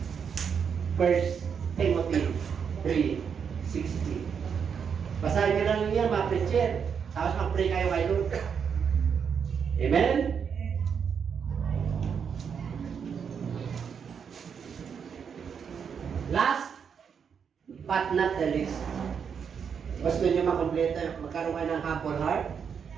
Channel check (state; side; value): quieter; left; 6.9 dB